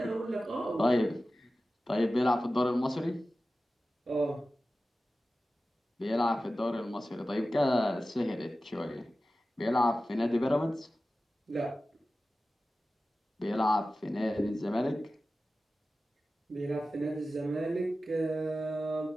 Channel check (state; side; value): normal; both; correlation 0.95